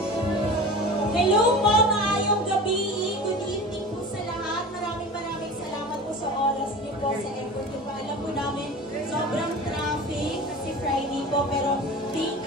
Hello po, maayong gabi. Good evening po sa lahat. Maraming salamat po sa oras niyo po, sa effort niyo po. Alam po namin, sobrang traffic kasi Friday po. Pero thank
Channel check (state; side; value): normal; both; correlation 0.34